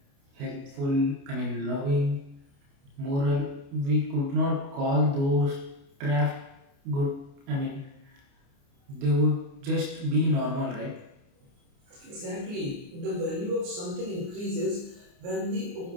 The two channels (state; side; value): late; left; 29 ms